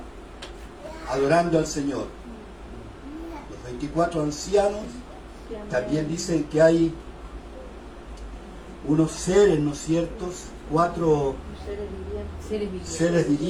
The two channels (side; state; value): both; identical; correlation 1.00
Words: adorando al Señor. Los 24 ancianos también dicen que hay unos seres, ¿no es cierto?, 4 seres